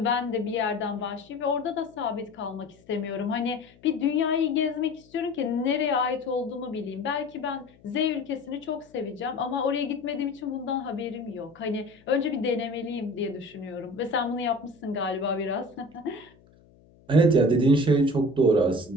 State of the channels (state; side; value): noise; left; hum, 28 dB below the sound